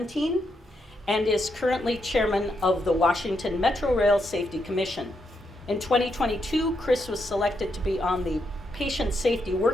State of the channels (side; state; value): both; normal; correlation 0.80